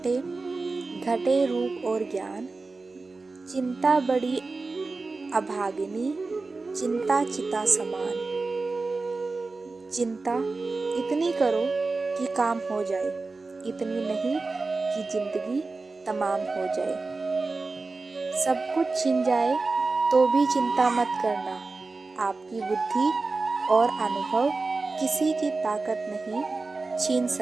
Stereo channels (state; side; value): quieter; left; 3.7 dB